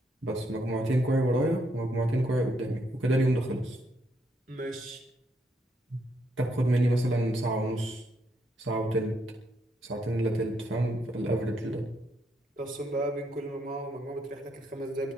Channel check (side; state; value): both; normal; correlation 0.76